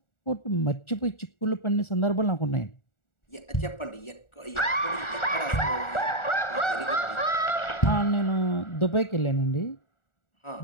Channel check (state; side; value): late; right; 1.4 ms